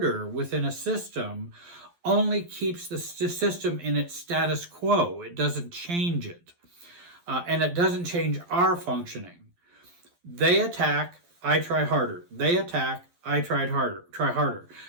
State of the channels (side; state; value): left; late; 12 ms